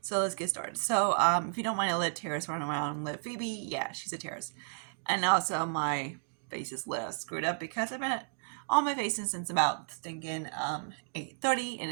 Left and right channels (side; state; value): left; silent; digital silence